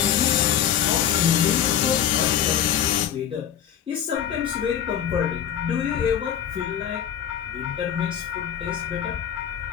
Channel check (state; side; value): quieter; right; 9.6 dB